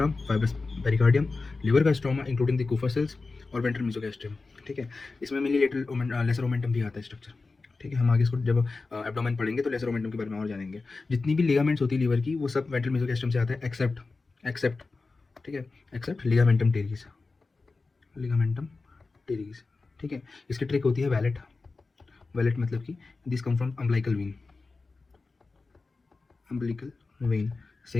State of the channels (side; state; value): right; quieter; 3.9 dB